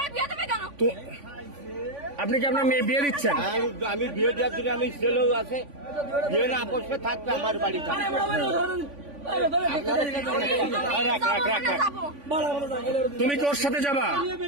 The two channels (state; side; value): late; left; 3.5 ms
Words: বিয়ে দেবে কেন? তো আপনি কি আপনার মেয়ে বিয়ে দিচ্ছেন? আমি বিয়ে দেওয়ার জন্য আমি ছেলেও আছে, বিয়ে না আপসে থাকবে আমার বাড়ি থাকবে। তুমি কি ওর সাথে যাবা?